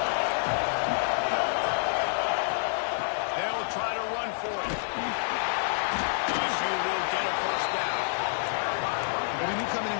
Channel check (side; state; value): right; silent; digital silence